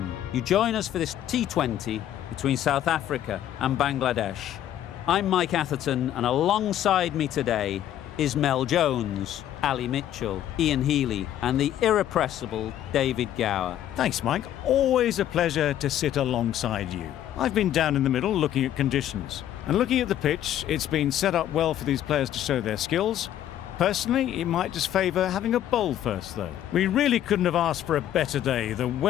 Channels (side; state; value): right; quieter; 11.6 dB